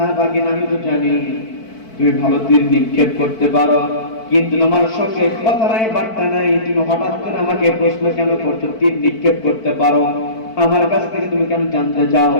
ভাগিনা, আমি তো জানি তুমি ভালো তীর নিক্ষেপ করতে পারো, কিন্তু তোমার সঙ্গে কথা নাই বার্তা নাই, তুমি হঠাৎ করে আমাকে প্রশ্ন কেন করছো তীর নিক্ষেপ করতে পারো, আমার কাছ থেকে তুমি কেন জানতে চাও?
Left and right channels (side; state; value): right; late; 4.5 ms